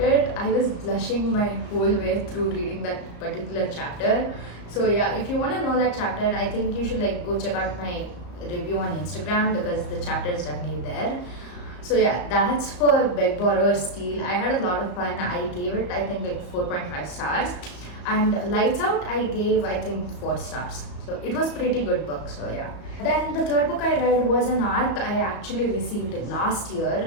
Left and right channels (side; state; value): right; late; 34 ms